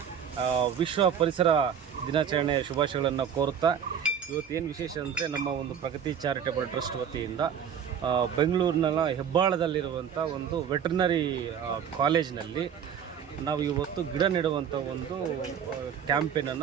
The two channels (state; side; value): quieter; left; 8.1 dB